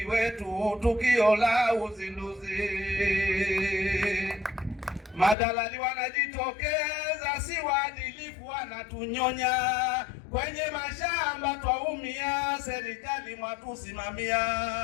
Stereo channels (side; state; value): right; drops out; at 5.4 s